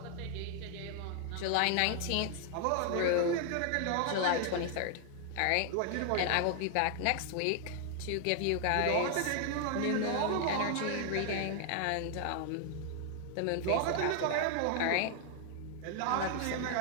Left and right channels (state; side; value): different; both; correlation 0.00